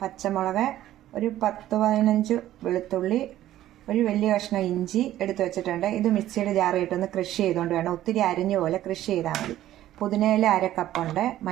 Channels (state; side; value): quieter; left; 13.4 dB